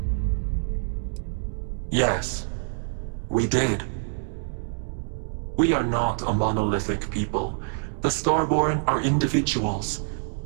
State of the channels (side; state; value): left; silent; digital silence